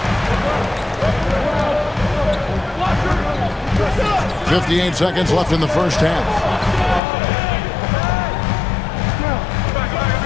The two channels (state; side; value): drops out; right; at 7.0 s